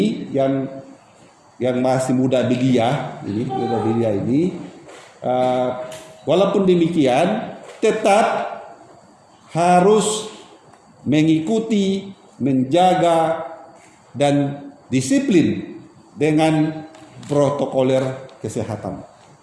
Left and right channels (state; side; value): identical; both; correlation 1.00